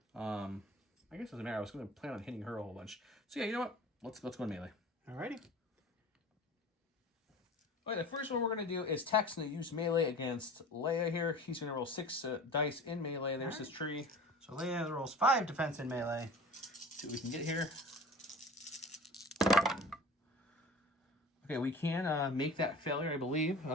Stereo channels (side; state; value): both; normal; correlation 0.39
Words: I guess it doesn't matter. I was going to plan on hitting her a whole bunch. So yeah, you know what? Let's go in melee. Alrighty. Okay, the first one we're going to do is Tech's going to use melee against Leia here. He's going to roll 6 dice in melee. There's his tree. So Leia rolls 5 defense in melee. See what we can get here. Okay, we can make that failure, I believe.